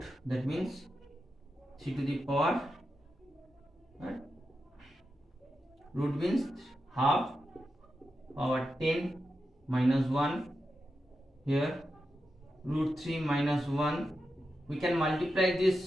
that means 3 to the power, right? Root means half power 10 minus 1, here root 3 minus 1. We can multiply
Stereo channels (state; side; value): normal; both; correlation 0.89